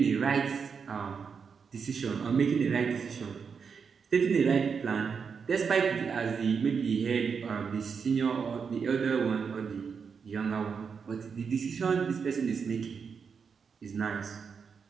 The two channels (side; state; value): left; quieter; 6.0 dB